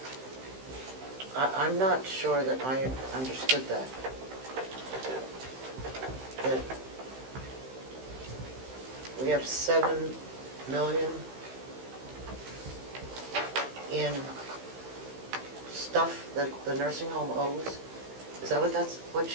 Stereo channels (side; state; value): left; late; 15 ms